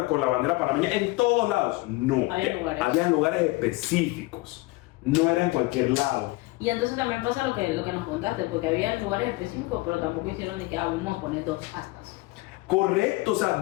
con la bandera panameña en todos lados. No, había lugares específicos. No era en cualquier lado. Y entonces también pasa lo que nos contaste, porque había lugares específicos, pero tampoco hicieron ni que vamos a poner 2 astas. Correcto, o sea,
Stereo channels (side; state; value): right; quieter; 21.7 dB